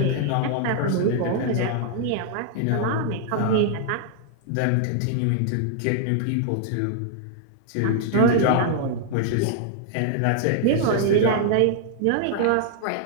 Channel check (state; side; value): different; both; correlation -0.01